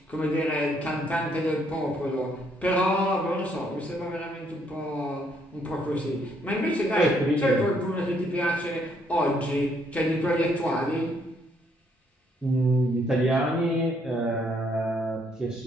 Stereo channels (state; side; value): normal; both; correlation 0.70